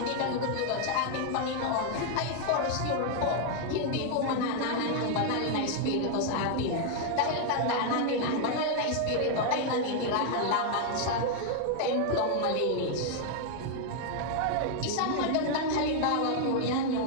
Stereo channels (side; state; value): both; different; correlation 0.00